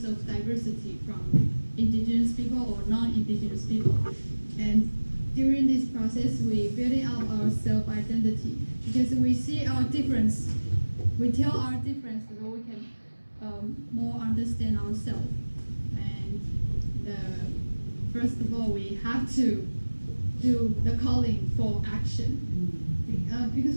of diversity from indigenous people or non-indigenous people. And during this process, we building up our self-identity because we see our difference. We tell our difference so we can more understand ourselves. And first of all, we have to do the calling for action. Because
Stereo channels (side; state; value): both; inverted; correlation -1.00